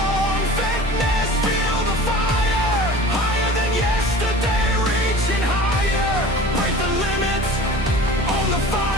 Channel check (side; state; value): both; normal; correlation 0.40